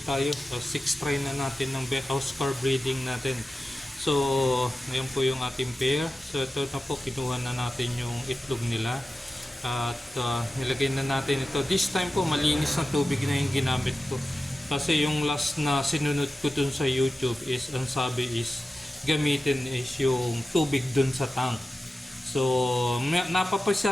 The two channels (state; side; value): normal; both; correlation 0.93